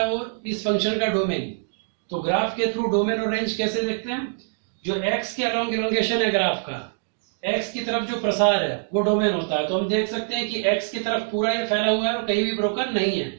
वो इस फंक्शन का डोमेन, तो ग्राफ के थ्रू डोमेन और रेंज कैसे देखते हैं? जो एक्स के अलोंग इलोंगेशन है ग्राफ का, एक्स की तरफ जो प्रसार है वो डोमेन होता है। तो हम देख सकते हैं कि एक्स की तरफ पूरा ये फैला हुआ है और कहीं भी ब्रोकन नहीं है,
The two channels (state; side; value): silent; left; digital silence